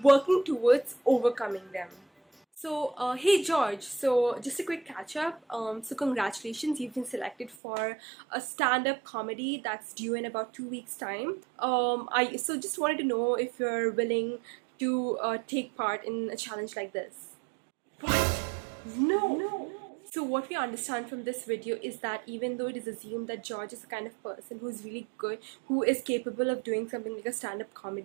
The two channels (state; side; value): drops out; left; at 7.6 s